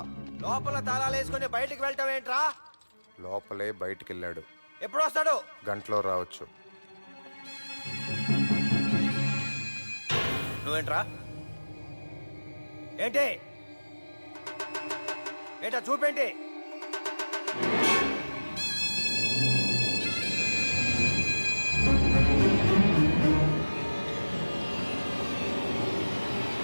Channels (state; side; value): inverted; both; correlation -1.00